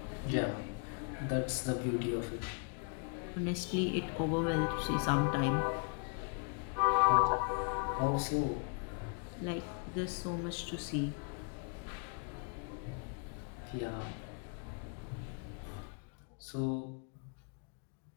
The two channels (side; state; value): right; quieter; 38.4 dB